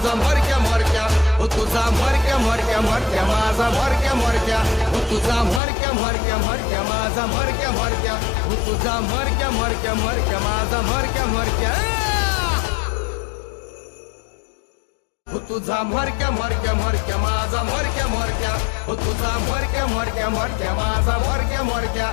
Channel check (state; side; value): drops out; right; at 5.6 s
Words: मरक्या मरक्या, हो तुझा मरक्या मरक्या मरक्या माझा मरक्या मरक्या, हो तुझा मरक्या मरक्या मरक्या माझा मरक्या मरक्या, हो तुझा मरक्या मरक्या मरक्या माझा मरक्या मरक्या. हो तुझा मरक्या मरक्या मरक्या माझा मरक्या मरक्या, हो तुझा मरक्या मरक्या मरक्या माझा मरक्या मरक्या,